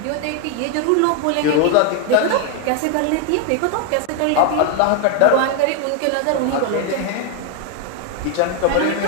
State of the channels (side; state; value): both; different; correlation 0.01